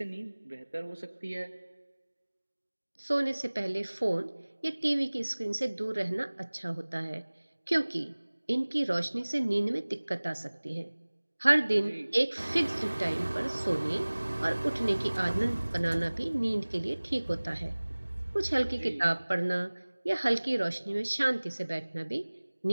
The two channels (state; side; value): inverted; both; correlation -1.00